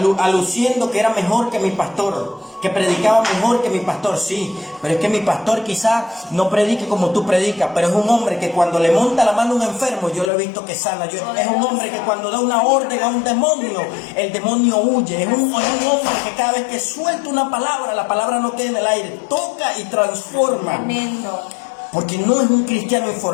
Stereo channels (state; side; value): drops out; right; at 10.3 s